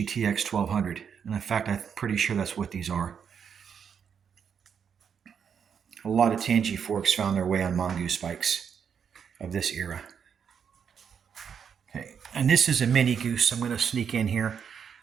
TX 1200. And in fact, I'm pretty sure that's what these are. A lot of Tangy forks found their way on Mongoose bikes of this era. Okay, and this is a Mini Goose. I'm going to sneak in here.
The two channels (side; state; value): left; quieter; 7.3 dB